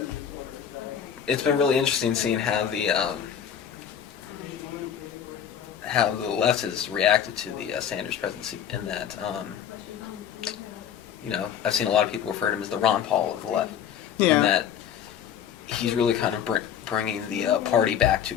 it's been really interesting seeing how the left has reacted to the Sanders presidency. In that, I've seen a lot of people refer to him as the Ron Paul of the left. Yeah. In that he's really kind of bringing the party back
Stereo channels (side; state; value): right; quieter; 8.9 dB